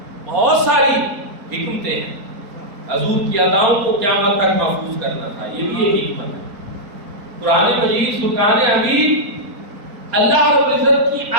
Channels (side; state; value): left; late; 4.2 ms